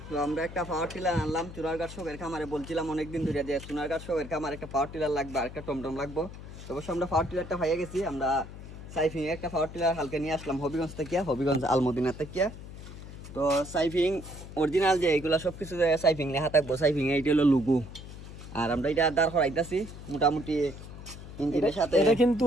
তো আমরা একটা পাওয়ার টিলার আনলাম চুনারঘাট শখের খামারে। বলছিলাম অনেকদিন ধরে যে চুনারঘাট শখের খামারে একটা পাওয়ার টিলার লাগবে আর একটা টমটম লাগবে। তো অবশ্য আমরা পাওয়ার টিলারটা পাইয়ে গেছি। আমরা সাইফিং একটা পাওয়ার টিলার হালকা নিয়ে আসলাম হবিগঞ্জ থেকে, হবিগঞ্জ আলমদিনা থেকে। তো সাইফিং অরিজিনাল যে এইগুলো সব কিছু সাইফিং লেখা থাকবো। সাইফিং এইটা হলো লুগু। আর আমরা এটা দাঁড় করাইতেছি মোটামুটি ইঞ্জিনের সাথে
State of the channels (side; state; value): left; noise; hum, 13 dB below the sound